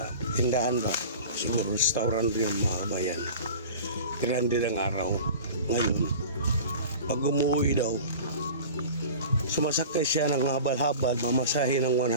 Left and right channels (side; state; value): both; inverted; correlation -0.38